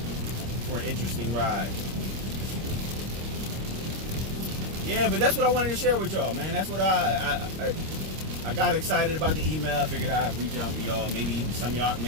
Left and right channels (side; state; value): left; late; 26 ms